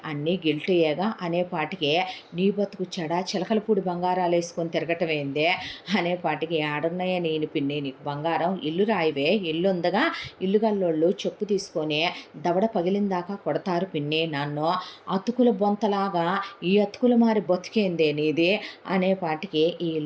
అన్నీ గిల్టీయేగా అనేపాటికే, నీ బతుకు చెడా చిలకలపూడి బంగారాలు వేసుకొని తిరగటమేందే అనేపాటికి, ఆడున్నాయే నేను పిన్ని నీకు బంగారం, ఇల్లు రాయివే, ఇల్లు ఉందగా, ఇల్లు గల్లోళ్ళు చెప్పు తీసుకొని దవడ పగిలిందాకా కొడతారు పిన్ని నన్ను, అతుకుల బొంతలాగా ఈ అతుకుల మారి బతికేందే నీది అనేపాటికి, ఈ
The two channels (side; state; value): both; identical; correlation 1.00